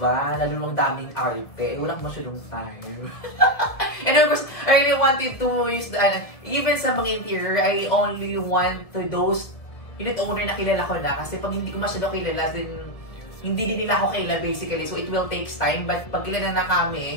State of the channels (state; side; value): late; right; 1.7 ms